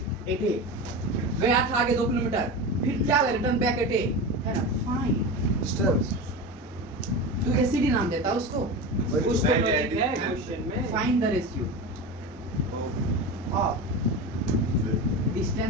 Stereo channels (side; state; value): both; normal; correlation 0.26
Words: एटे, गया था आगे 2 किलोमीटर, फिर क्या हो गया, रिटर्न बैक एटे, है ना। फाइन डिस्टेंस तू एसीडी नाम देता उसको, कुछ तो लॉजिक है क्वेश्चन में। Find the ratio of